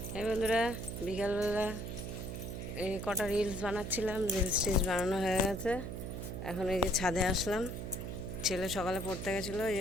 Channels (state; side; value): noise; right; hum, 6 dB below the sound